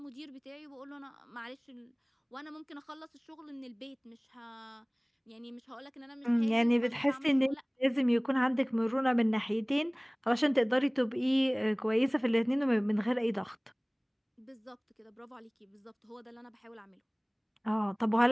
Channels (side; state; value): both; identical; correlation 1.00